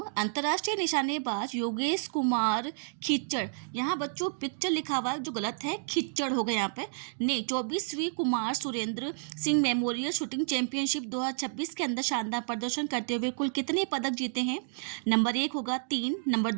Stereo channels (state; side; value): silent; left; digital silence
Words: अंतर्राष्ट्रीय निशानेबाज योगेश कुमार खिच्चड़, यहाँ बच्चों पिक्चर लिखा हुआ है जो गलत है, खिच्चड़ हो गया यहाँ पे, ने 24वीं Kumar Surendra Singh memorial shooting championship 2026 के अंदर शानदार प्रदर्शन करते हुए कुल कितने पदक जीते हैं? नंबर 1 होगा 3, नंबर